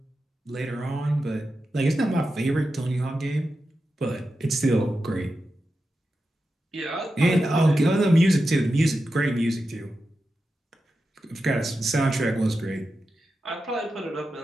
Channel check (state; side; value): normal; both; correlation 0.90